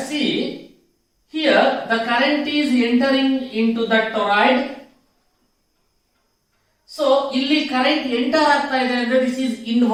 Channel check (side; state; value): both; identical; correlation 1.00